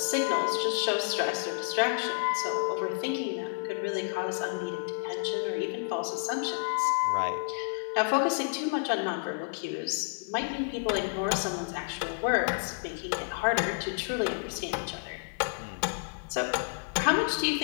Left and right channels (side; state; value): right; silent; 58 dB below the other